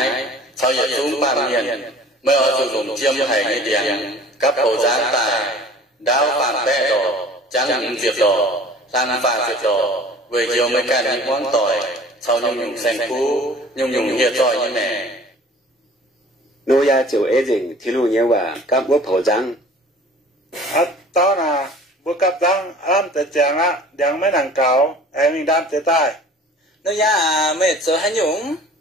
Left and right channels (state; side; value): normal; both; correlation 0.46